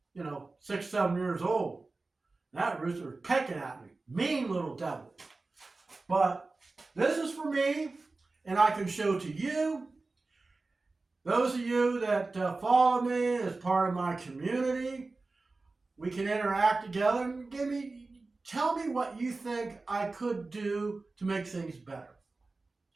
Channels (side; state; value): left; quieter; 3.5 dB